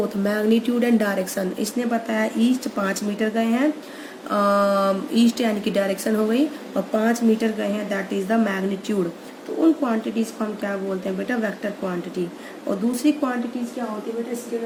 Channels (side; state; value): both; identical; correlation 1.00